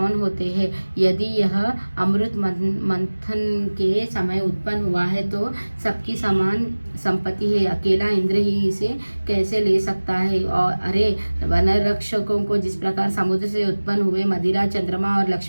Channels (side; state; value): both; inverted; correlation -1.00